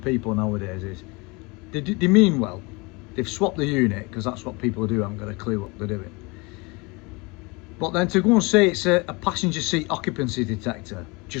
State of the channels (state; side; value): quieter; right; 26.9 dB